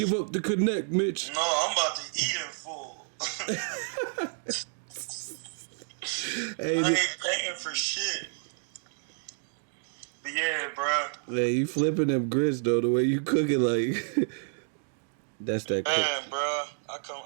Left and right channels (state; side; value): silent; left; digital silence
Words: up the connect, Mitch. No, I'm about to eat in full. Hey, I ain't paying for shit. But yeah, bro. Hey, you flipping them grits though. The way you cook it, like that's that. Man, bro,